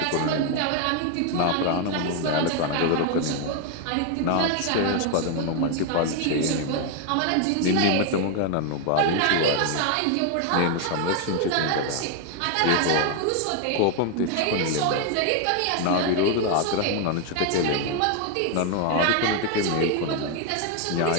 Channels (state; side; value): different; both; correlation 0.01